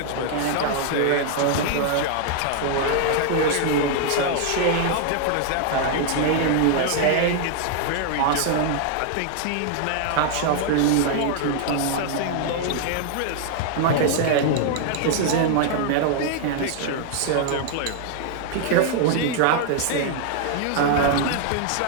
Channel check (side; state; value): both; different; correlation 0.00